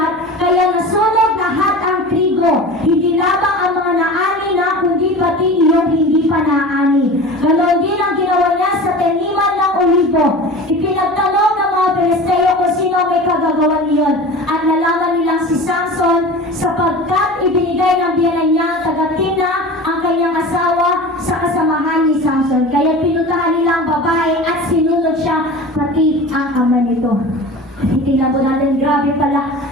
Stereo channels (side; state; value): both; normal; correlation 0.35